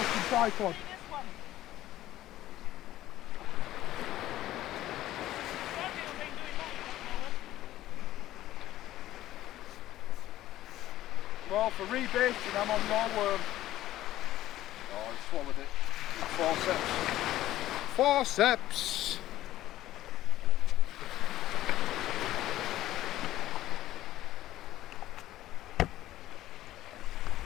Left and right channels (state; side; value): quieter; right; 14.4 dB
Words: tripod. See this one. Gabriel ain't doing that at the moment. Well, for rebaiting, I'm on your worm. Oh, I swallowed it. Forceps. Forceps!